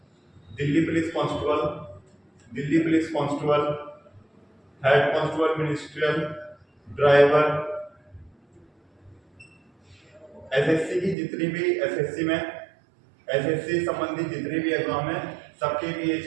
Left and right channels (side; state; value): left; drops out; at 11.2 s